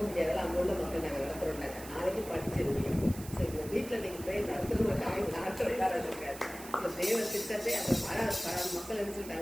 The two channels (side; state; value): right; noise; hiss, 14 dB below the sound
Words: முடியாதால அங்கே உள்ள மக்கள் நாங்கள் நடத்துகிறோம்னாங்க. நாளைக்கு படிச்சிருக்கீங்க. ஸோ இந்த வீட்டில் நீங்கள் ப்ரேயர் நடத்துகிறோம் அவங்க நடத்துறதா இருக்காது. ஸோ தேவ திட்டத்தை அந்த மக்கள் என்ன